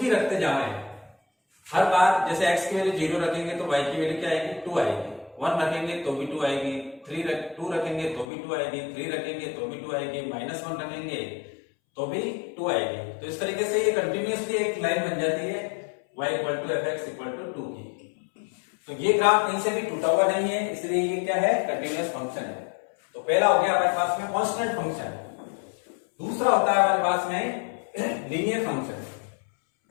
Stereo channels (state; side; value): drops out; right; at 8.2 s